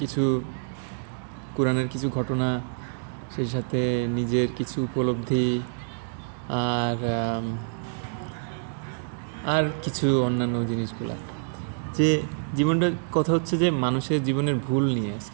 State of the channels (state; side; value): silent; left; 60 dB below the other